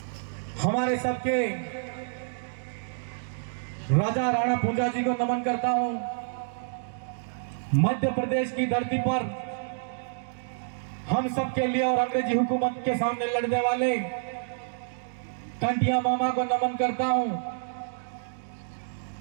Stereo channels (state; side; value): silent; left; digital silence